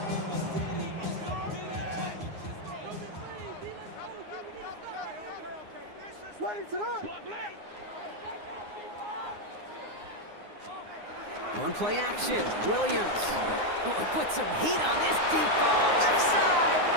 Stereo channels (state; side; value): late; left; 9.6 ms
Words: One play action. Williams. Oh, put some heat on this deep ball. Left side.